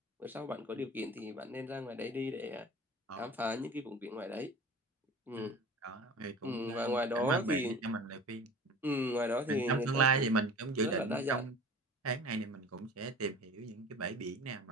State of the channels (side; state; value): both; normal; correlation 0.40